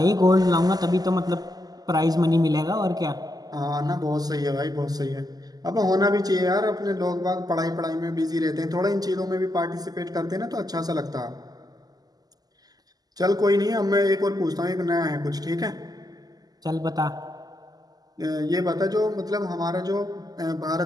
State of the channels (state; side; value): late; left; 0.18 ms